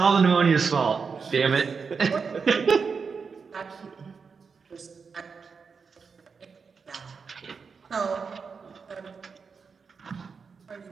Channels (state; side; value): quieter; left; 5.4 dB